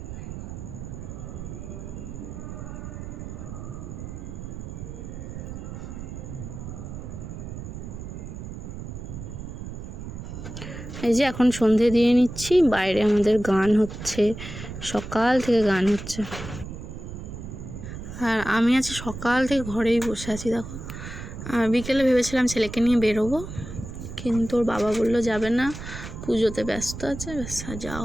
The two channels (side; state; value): right; noise; rumble, 9 dB below the sound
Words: এই যে এখন সন্ধে দিয়ে নিচ্ছি, বাইরে আমাদের গান হচ্ছে, সকাল থেকে গান হচ্ছে। আর আমি আছি সকাল থেকে ঘরেই বসে আছি, দেখো। বিকেলে ভেবেছিলাম ছেলেকে নিয়ে বেরোবো, কিন্তু ওর বাবা বললো যাবে না, পুজোতে ব্যস্ত আছে, ব্যাস যাওয়া